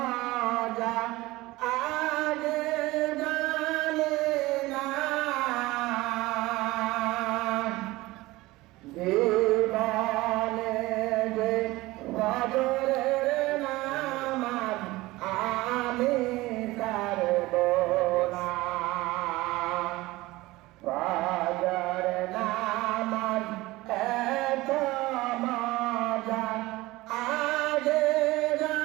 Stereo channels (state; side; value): quieter; left; 19.6 dB